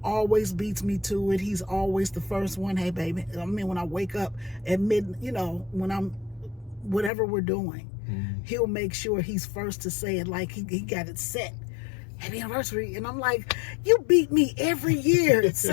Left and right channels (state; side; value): drops out; right; at 7.1 s